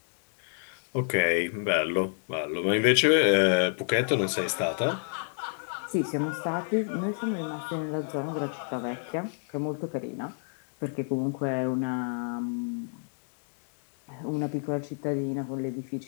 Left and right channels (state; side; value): silent; right; digital silence